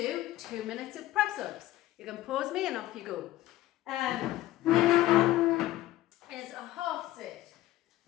2 minutes of press ups. You can pause me and off you go. Next one is a half sit.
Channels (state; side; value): quieter; right; 15.7 dB